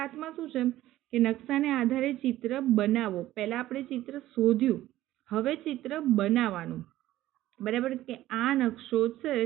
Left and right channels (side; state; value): left; quieter; 14.8 dB